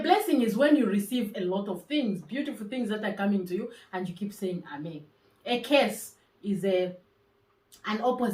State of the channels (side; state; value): both; identical; correlation 1.00